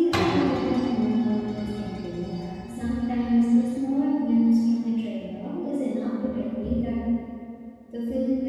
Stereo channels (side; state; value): both; identical; correlation 1.00